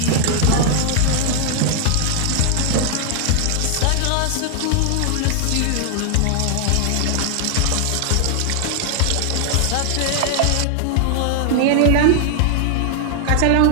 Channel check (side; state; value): both; different; correlation 0.00